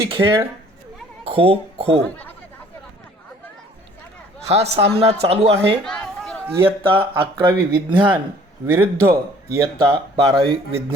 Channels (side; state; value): both; normal; correlation 0.55